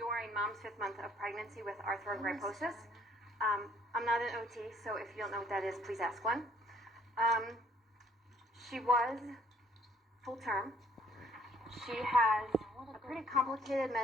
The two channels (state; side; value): normal; both; correlation 0.62